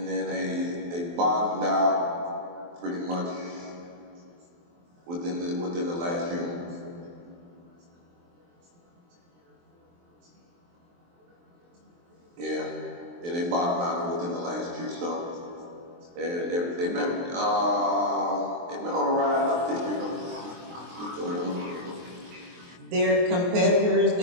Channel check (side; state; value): left; late; 23 ms